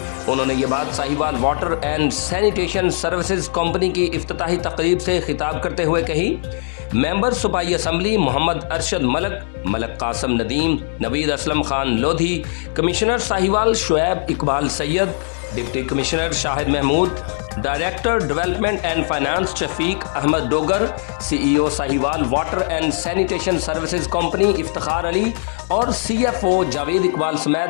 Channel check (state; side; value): silent; right; digital silence